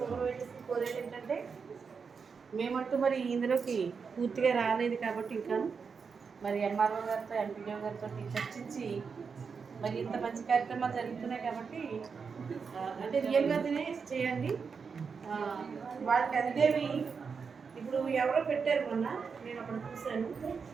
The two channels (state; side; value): quieter; left; 5.6 dB